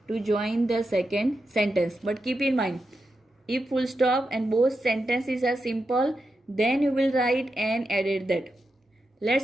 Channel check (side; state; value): both; normal; correlation 0.88